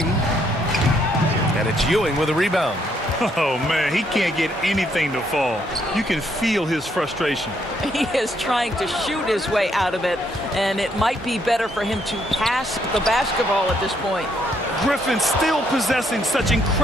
And it's Ewing with a rebound. Oh, man, he can't get anything to fall. You can feel his frustration. He is trying to shoot his way out of it, and it might be better for him to pass the basketball at this point. Griffin still possessing such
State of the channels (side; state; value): both; normal; correlation 0.72